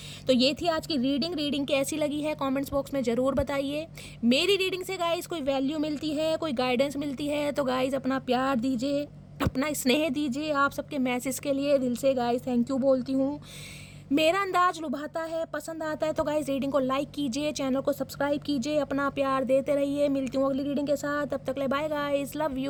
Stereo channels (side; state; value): both; identical; correlation 1.00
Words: तो ये थी आज की रीडिंग कैसी लगी है कमेंट्स बॉक्स में ज़रूर बताइए। मेरी रीडिंग से गाइस कोई वैल्यू मिलती है, कोई गाइडेंस मिलती है, तो गाइस अपना प्यार दीजिए, अपना स्नेह दीजिए। आप सबके मैसेज के लिए दिल से गाइस थैंक यू बोलती हूँ। मेरा अंदाज लुभाता है, पसंद आता है, तो गाइस रीडिंग को लाइक कीजिए, चैनल को सब्सक्राइब कीजिए, अपना प्यार देते रहिए। मिलती हूँ अगली रीडिंग के साथ, तब तक ले bye guys, love